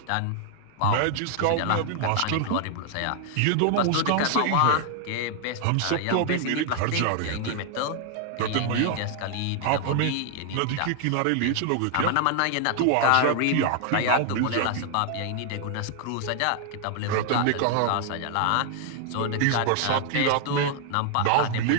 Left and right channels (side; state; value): both; different; correlation 0.00